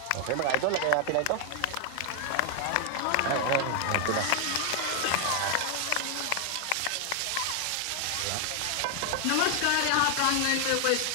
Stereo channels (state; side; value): different; both; correlation 0.00